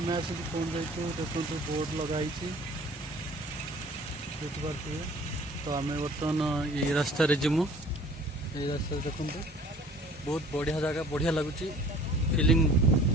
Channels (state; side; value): normal; both; correlation 0.49